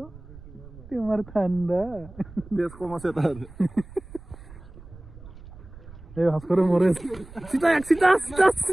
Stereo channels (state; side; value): noise; right; rumble, 18 dB below the sound